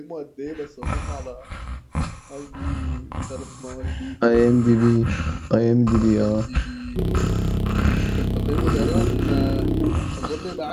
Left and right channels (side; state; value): both; identical; correlation 1.00